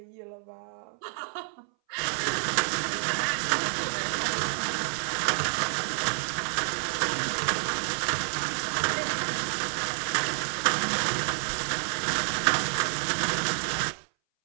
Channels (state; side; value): silent; left; 59 dB below the other